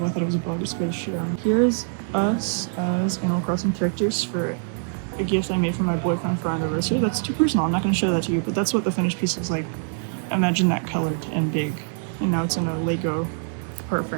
I thought it was a bug. It scared the shit out of me. Here's us as Animal Crossing characters for a gift I made for my boyfriend for our anniversary. That's too personal. I'm not going to show that to you, but that's what the finished piece looks like. Imagine that colored and big. And now it's in a Lego part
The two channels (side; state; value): left; silent; digital silence